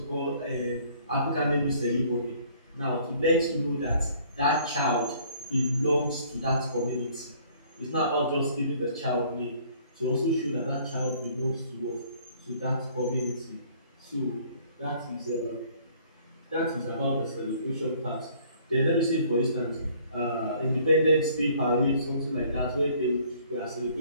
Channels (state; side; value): inverted; both; correlation -0.58